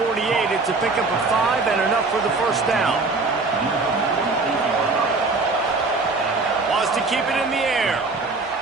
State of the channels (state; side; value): quieter; left; 3.7 dB